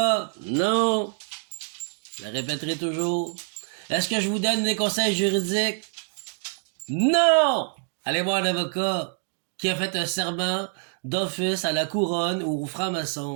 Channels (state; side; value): silent; left; 56 dB below the other